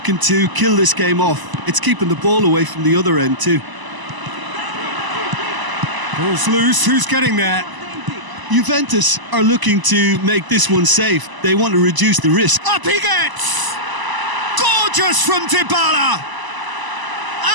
to kill this game off. It's keeping the ball away from the other end too. Ball's loose, who's getting there? Juventus are looking to make this one safe. They want to reduce the risk. Up he gets! Gorgeous from Dybala!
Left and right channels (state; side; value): late; left; 1.0 ms